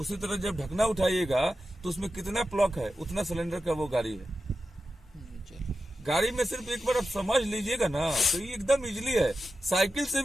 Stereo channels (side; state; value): both; normal; correlation 0.91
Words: तरह जब ढकना उठाइएगा तो उसमें कितना प्लग है उतना सिलेंडर का वो गाड़ी है। गाड़ी में सिर्फ एक बार आप समझ लीजिएगा ना तो ये एकदम इजीली है, साइकिल से